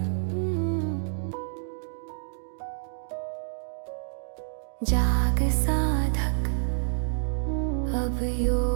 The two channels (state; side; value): silent; left; digital silence